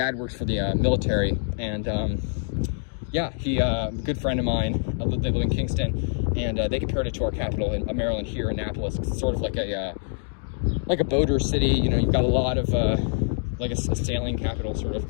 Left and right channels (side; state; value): right; silent; digital silence